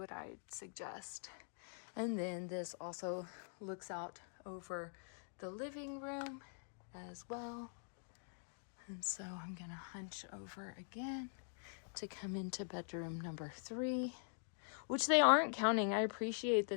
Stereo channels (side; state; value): right; silent; digital silence